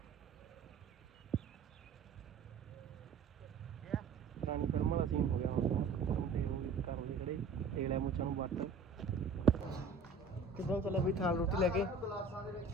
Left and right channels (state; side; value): quieter; left; 4.4 dB